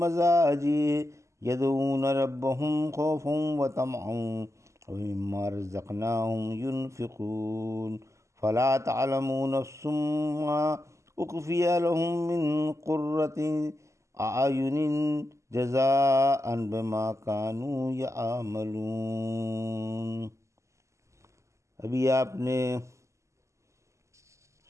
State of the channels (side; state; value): left; late; 0.14 ms